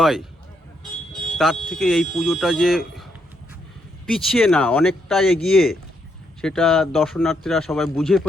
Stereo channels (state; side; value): normal; both; correlation 0.76